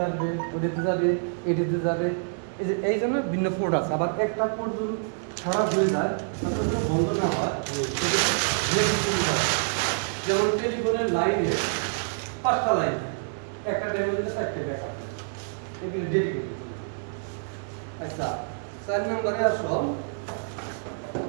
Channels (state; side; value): silent; left; digital silence